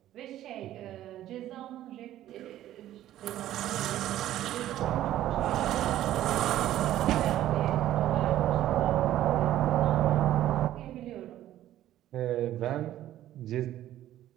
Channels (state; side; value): quieter; left; 13.1 dB